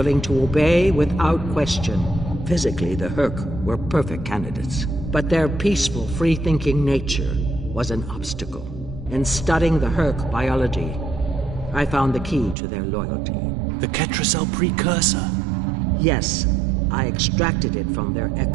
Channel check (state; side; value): drops out; left; at 12.6 s